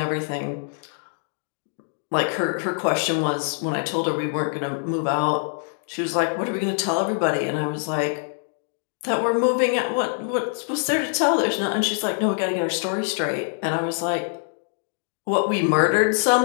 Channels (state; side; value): silent; right; digital silence